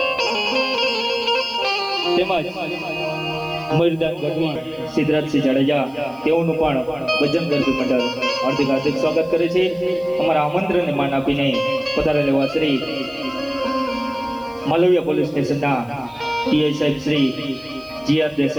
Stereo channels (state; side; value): noise; left; hiss, 30 dB below the sound